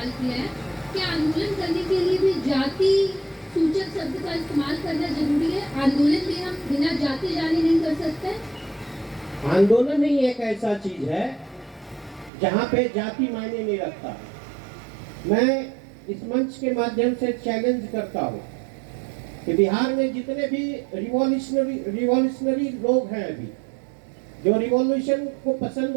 किया है। क्या आंदोलन करने के लिए भी जाति सूचक शब्द का इस्तेमाल करना जरूरी है? आंदोलन में हम बिना जाति जाने नहीं कर सकते? आंदोलन ही एक ऐसा चीज है जहाँ पे जाति मायने नहीं रखता। मैं इस मंच के माध्यम से चैलेंज करता हूँ कि बिहार में जितने भी रिवॉल्यूशनरी लोग हैं, अभी जो रिवॉल्यूशन को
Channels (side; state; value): left; drops out; at 12.3 s